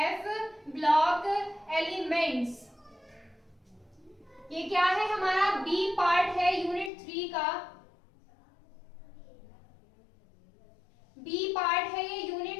ब्लॉक एलिमेंट्स ये क्या है? हमारा बी पार्ट है यूनिट 3 का। बी पार्ट है ये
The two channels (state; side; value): drops out; right; at 6.9 s